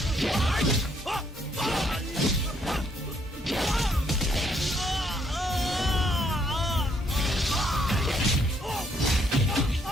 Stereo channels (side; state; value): both; normal; correlation 0.70